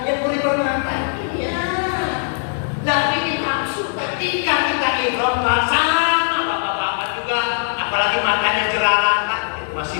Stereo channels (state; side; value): silent; right; digital silence